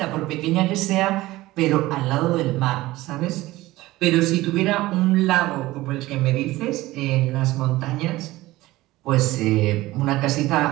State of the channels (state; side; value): quieter; left; 18.0 dB